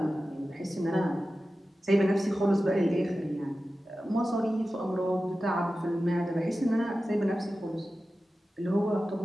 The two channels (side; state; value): both; normal; correlation 0.94